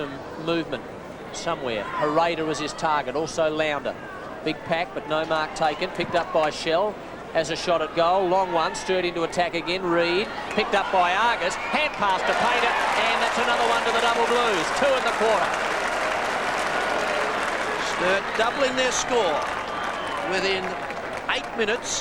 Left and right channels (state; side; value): identical; both; correlation 1.00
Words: movement somewhere. Harada was his target, also Lounder. Big pack, but no mark taken. Picked up by Shell. Has a shot at goal. Long one, stirred into attack again. Reed, picked up by Argus. Hand pass to Painter, and that's another one to the double blues. 2 in the quarter. Sturt doubling their score within 8